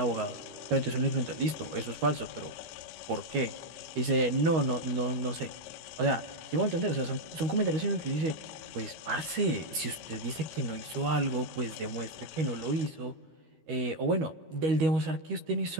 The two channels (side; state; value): left; late; 13 ms